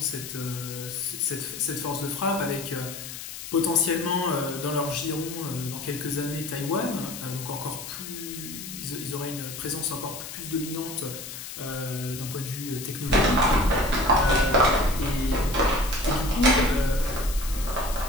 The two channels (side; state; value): left; noise; hiss, 10 dB below the sound